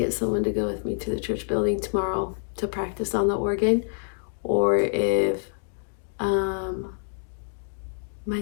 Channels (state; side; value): silent; right; digital silence